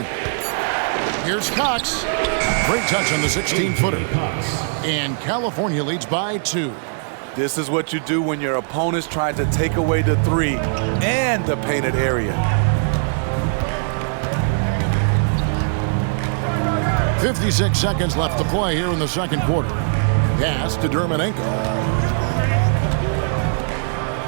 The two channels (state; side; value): silent; left; digital silence